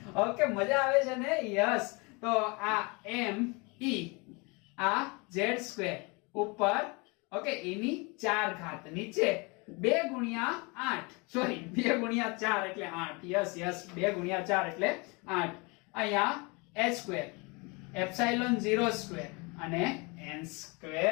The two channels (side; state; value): right; quieter; 28.7 dB